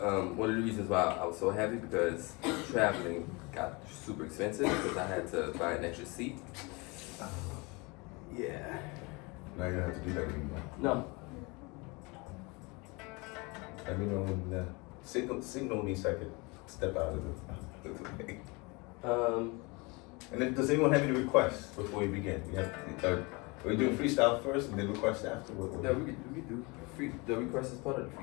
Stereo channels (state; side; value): quieter; right; 27.3 dB